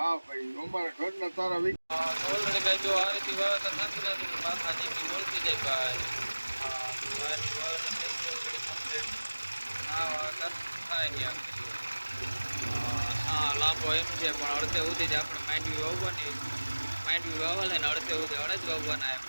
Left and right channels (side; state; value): both; inverted; correlation -1.00